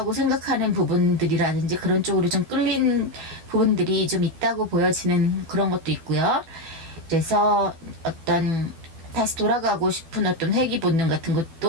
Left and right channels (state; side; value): late; left; 12 ms